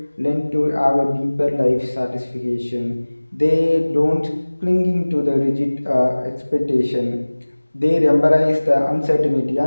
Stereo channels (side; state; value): both; inverted; correlation -1.00